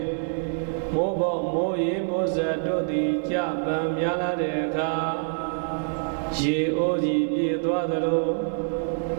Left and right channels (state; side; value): silent; left; 61 dB below the other